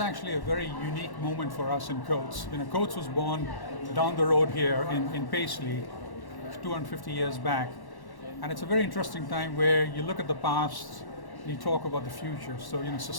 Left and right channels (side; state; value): right; late; 1.1 ms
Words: a very unique moment for us in Coates. Coates was born down the road here in Paisley 250 years back. And it's a very interesting time where you look at the past and you talk about the future. So,